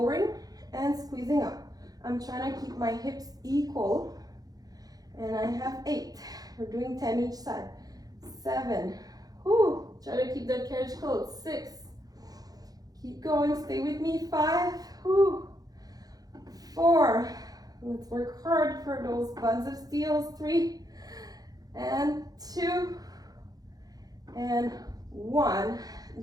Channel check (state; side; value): late; left; 0.18 ms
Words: and squeezing up. I'm trying to keep my hips equal, and I have 8. We're doing 10 each side. 7. Whew. Try to keep that carriage closed. 6. Keep going. Stay with me. 5. Whew. 4. Let's work hard for those buns of steels. 3 and 2 and 1.